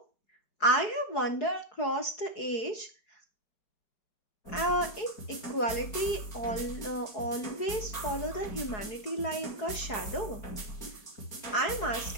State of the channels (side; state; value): right; late; 4.7 ms